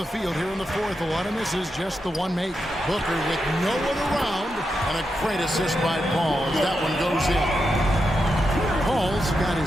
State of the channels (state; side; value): normal; both; correlation 0.86